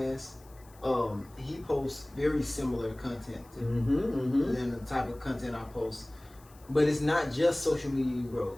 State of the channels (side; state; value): left; noise; hiss, 27 dB below the sound